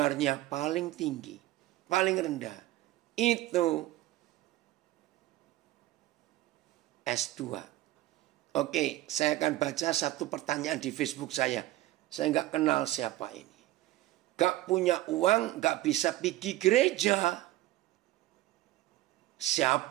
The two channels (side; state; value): left; quieter; 16.1 dB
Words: paling tinggi. Paling rendah. Itu S2. Oke, saya akan baca satu pertanyaan di Facebook saya. Saya nggak kenal siapa ini. Gak punya uang, gak bisa pergi gereja.